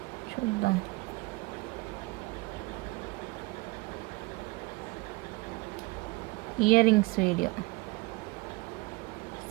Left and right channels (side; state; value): left; quieter; 22.1 dB